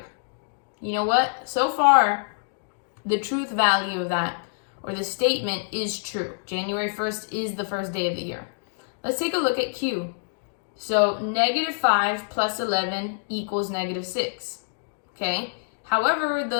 You know what? So far, the truth value of that, or the statement, is true. January 1st is the first day of the year. Let's take a look at Q. So -5 plus 11 equals -6. Okay? However, the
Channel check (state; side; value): silent; right; digital silence